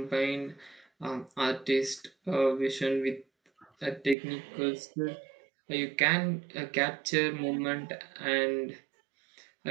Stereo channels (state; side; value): drops out; left; at 4.2 s